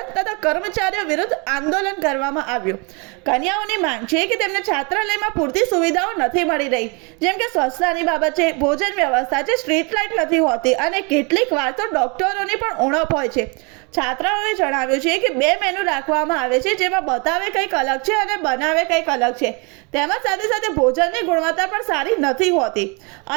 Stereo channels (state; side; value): quieter; left; 31.8 dB